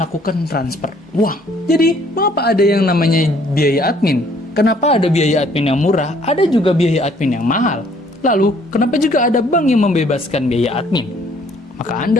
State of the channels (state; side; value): normal; both; correlation 0.61